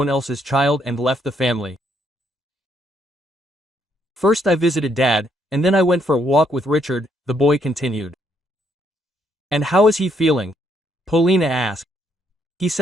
else's child and left the family. "First I visited Dad, and then I went for a walk with Richard," the boy continued. "And how is he feeling?" Polina asked. "He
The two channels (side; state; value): both; normal; correlation 0.73